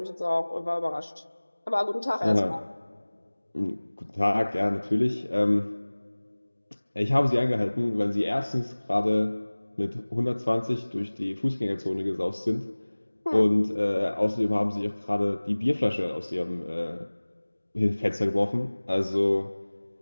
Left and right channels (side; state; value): both; inverted; correlation -1.00